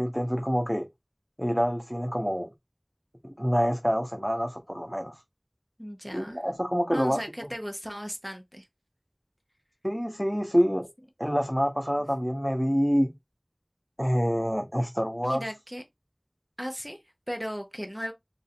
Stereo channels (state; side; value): identical; both; correlation 1.00